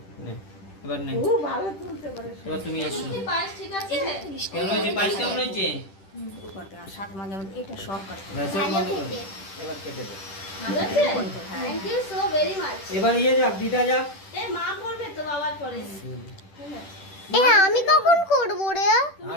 নে এবার নে ও ভালো তুলতে পারে এবার তুমি এসো কি পায়েস ঠিক আছে কেমন হয়েছে পায়েস কেমন হয়েছে করতে আর সাত মাঝে মাঝে এটা সব কাটতে ভেসে বন্ধ করো এবার কেটে দে ভালো আছে thank you so very much এবার ইয়ে যাক দিদা যাক এ মা করবে তো বাবার পরে এ আমি কখন করব রে?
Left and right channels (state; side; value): late; right; 10 ms